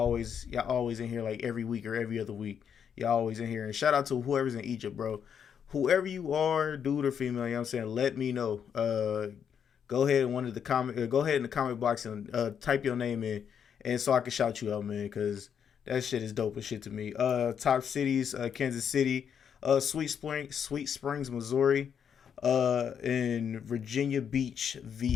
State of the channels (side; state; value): right; quieter; 7.9 dB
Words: in here like every week or every other week. Y'all always in here. And shout out to whoever's in Egypt, bro. Whoever you are, dude or female, you know what I'm saying? Let me know. Go ahead and one of the comment. Go ahead in the comment box and type your name in, and so I can shout you out, man. Because that shit is dope as shit to me. Top cities: Kansas City, Sweet Springs, Missouri, and Virginia Beach,